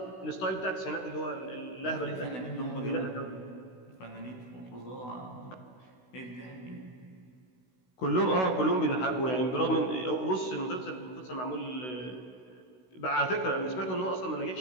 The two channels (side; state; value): right; late; 16 ms